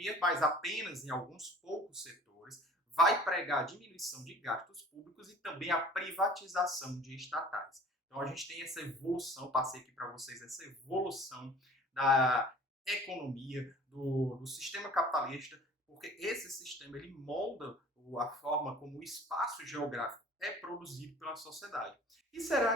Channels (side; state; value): both; normal; correlation 0.47